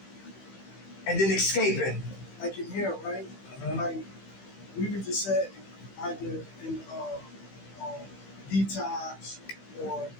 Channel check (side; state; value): right; late; 15 ms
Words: And then escaping. Like in here, right? Mhm. Like we were just said either in detox or